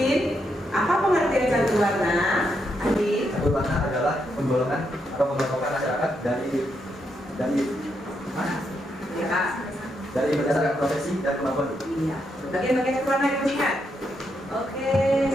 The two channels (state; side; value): normal; both; correlation 0.80